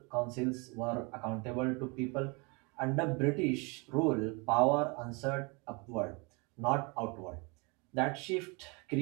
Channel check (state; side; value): quieter; left; 30.0 dB